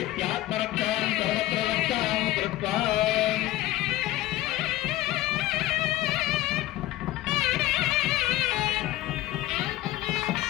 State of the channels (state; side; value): quieter; right; 15.9 dB